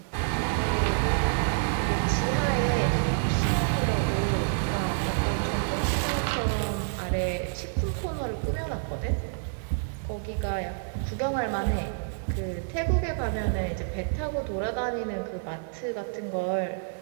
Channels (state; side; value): silent; left; 59 dB below the other